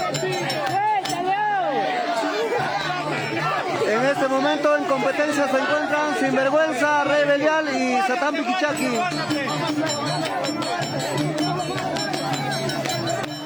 En este momento en competencia se encuentran Sinvergüenza, Rey Belial y Satán Piquichaki.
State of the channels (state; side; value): identical; both; correlation 1.00